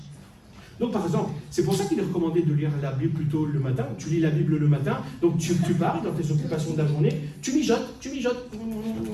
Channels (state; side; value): identical; both; correlation 1.00